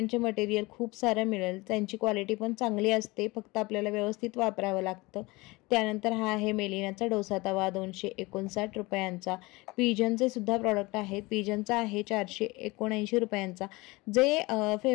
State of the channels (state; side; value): quieter; right; 23.0 dB